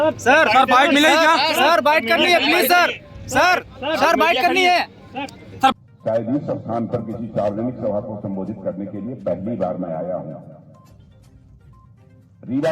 बाइट मिलेगी क्या? सर बाइट करनी है प्लीज सर बाइट करनी है। शायद इस स्थान पर किसी सार्वजनिक सभा को संबोधित करने के लिए पहली बार मैं आया हूं। रीवा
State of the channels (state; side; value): identical; both; correlation 1.00